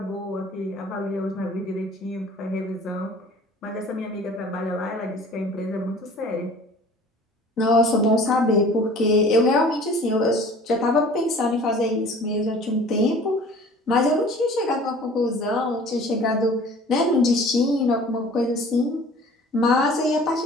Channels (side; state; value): both; normal; correlation 0.47